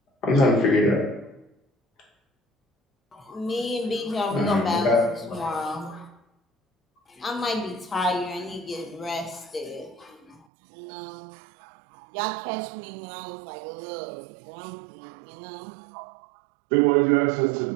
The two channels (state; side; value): drops out; left; at 10.5 s